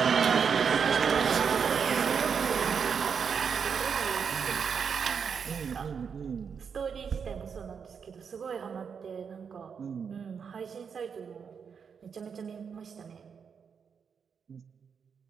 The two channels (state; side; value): quieter; left; 6.5 dB